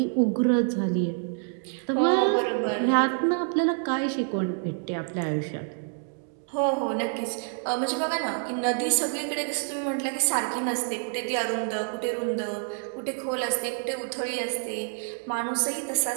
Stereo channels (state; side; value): silent; left; 59 dB below the other